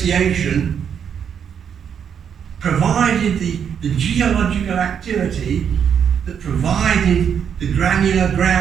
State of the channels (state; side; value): quieter; left; 7.8 dB